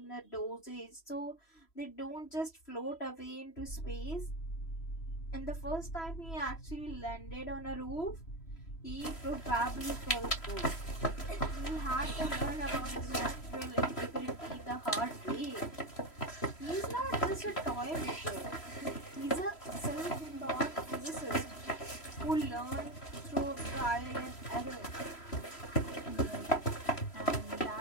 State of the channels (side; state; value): right; late; 3.0 ms